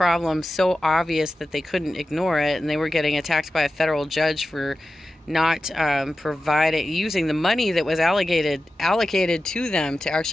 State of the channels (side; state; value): both; normal; correlation 0.93